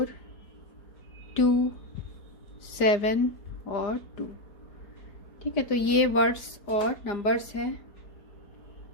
2, 7 और 2। ठीक है, तो ये वर्ड्स और नंबर्स हैं।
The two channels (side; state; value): right; late; 5.0 ms